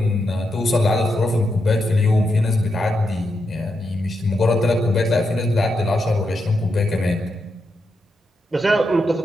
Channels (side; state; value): both; normal; correlation 0.84